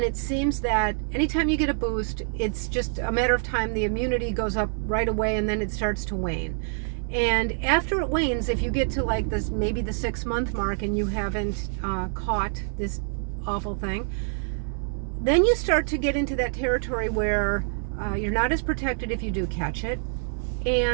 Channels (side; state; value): left; silent; 57 dB below the other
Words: it seems that anytime you get a boost, it's just a matter of time. The immunity goes up right away, and then it starts to wane. And after it wanes, if you get to like this, maybe the 6-month mark, and you haven't caught this awful thing, then you start to get into that territory where you're not as protected if you do catch it.